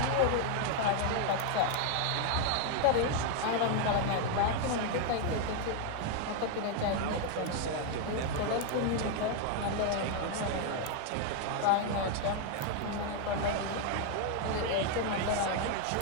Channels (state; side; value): different; both; correlation 0.00